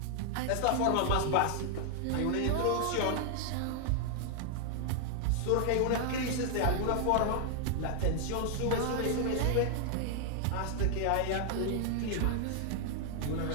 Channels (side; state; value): both; different; correlation 0.00